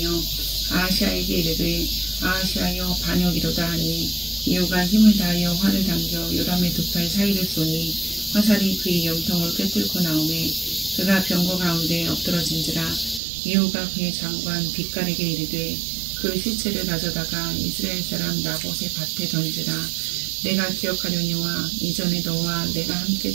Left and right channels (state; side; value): drops out; left; at 13.2 s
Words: 아하시아에게 이르되 아하시아여 반역이로다 하니 이후가 힘을 다하여 활을 당겨 요람의 두 팔 사이를 쏘니 화살이 그의 염통을 꿰뚫고 나오매 그가 병거 가운데 엎드러진지라. 이후가 그의 장관 빗갈에게 이르되 그 시체를 가져다가 이스라엘 사람 나봇의 밭에 던지라. 내가 기억하려니와 이전에 너와 내가 함께